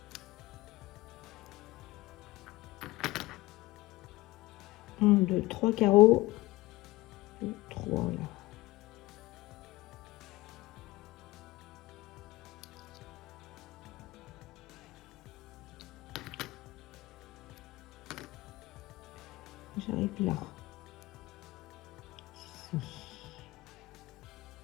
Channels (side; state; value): right; quieter; 19.8 dB